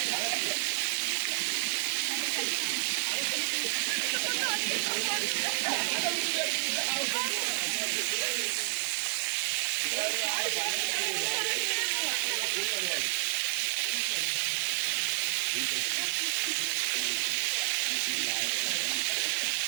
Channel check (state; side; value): silent; left; digital silence